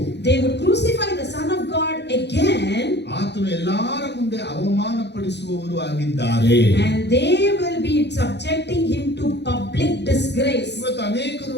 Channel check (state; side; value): late; right; 0.50 ms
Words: they would crucify the Son of God again, ಆತನು ಎಲ್ಲರ ಮುಂದೆ ಅವಮಾನ ಪಡಿಸುವವರು ಆಗಿದ್ದಾರೆ. and they will be subjecting him to public disgrace. ಇವತ್ತು